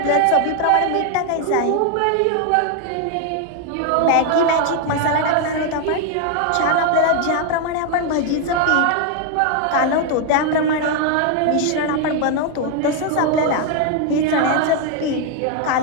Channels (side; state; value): both; different; correlation 0.01